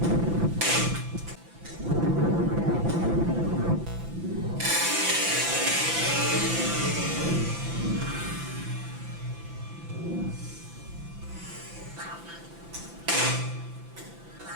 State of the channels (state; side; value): late; left; 5.9 ms